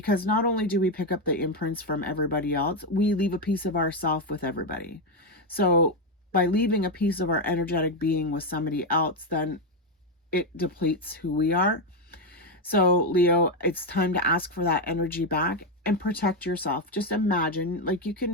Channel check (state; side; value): normal; both; correlation 0.06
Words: not only do we pick up the imprints from everybody else, we leave a piece of ourself with everybody. So by leaving a piece of our energetic being with somebody else, then it depletes who we are. So Leo, it's time to ask for that energy back and protect yourself. Just imagine, like